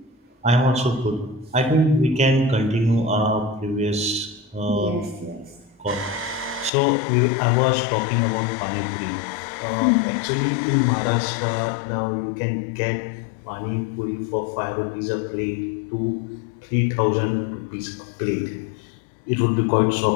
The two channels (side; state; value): right; drops out; at 6.7 s